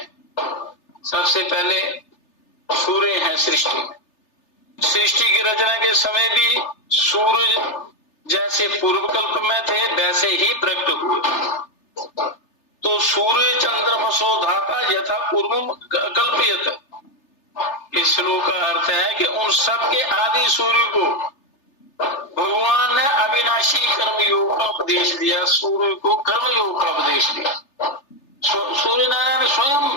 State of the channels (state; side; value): late; right; 3.3 ms